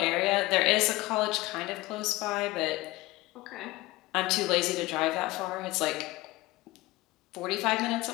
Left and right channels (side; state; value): right; quieter; 19.6 dB